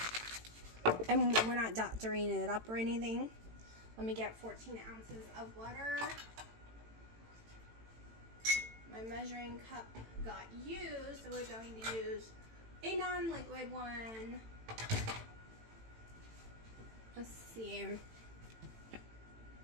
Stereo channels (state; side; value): late; left; 18 ms